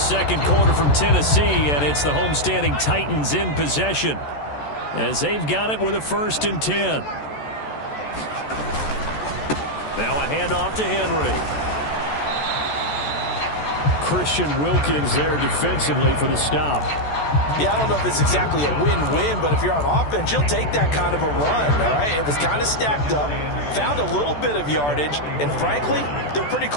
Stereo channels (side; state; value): right; late; 14 ms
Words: quarter from Tennessee, and it's the homestanding Titans in possession as they've got it with a 1st and 10. Now a handoff to Henry. Christian Wilkins there defensively for the stop. Yeah, I don't know if it's exactly a win-win, but if you're on offense, you'll take that kind of a run, all right? It was kind of stacked up, found a little bit of yardage, and frankly, they're pretty